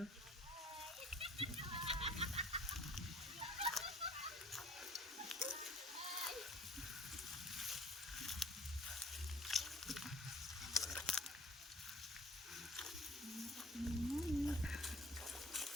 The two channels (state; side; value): normal; both; correlation 0.51